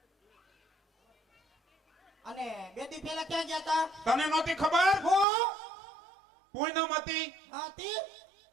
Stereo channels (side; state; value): left; drops out; at 5.2 s